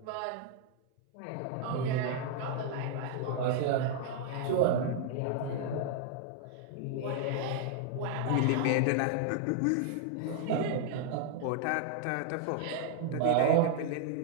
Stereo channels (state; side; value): different; both; correlation 0.00